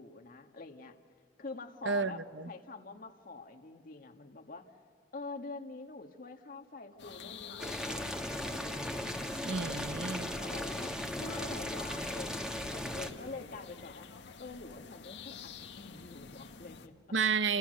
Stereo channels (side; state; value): both; normal; correlation 0.34